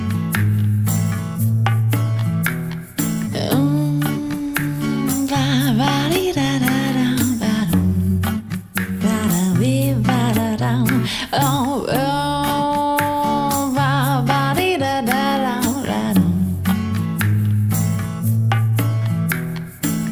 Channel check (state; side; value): identical; both; correlation 1.00